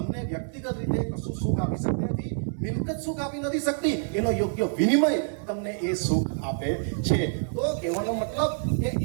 વ્યક્તિગત રીતે કશું સુખ આપી શકતી નથી. મિલકત સુખ આપી નથી શકતી, એનો યોગ્ય વિનિમય તમને એ સુખ આપે છે. તો કહેવાનો મતલબ કે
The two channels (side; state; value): left; silent; digital silence